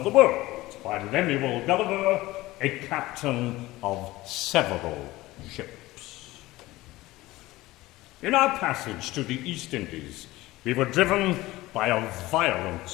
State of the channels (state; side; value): quieter; right; 18.4 dB